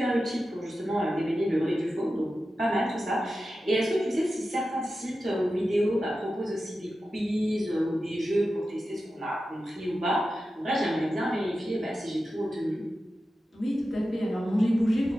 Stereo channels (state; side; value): normal; both; correlation 0.92